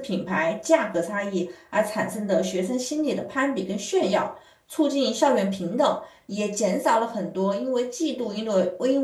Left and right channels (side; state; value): both; identical; correlation 1.00